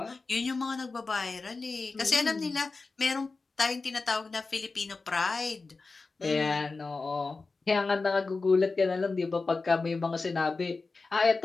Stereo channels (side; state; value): right; quieter; 4.0 dB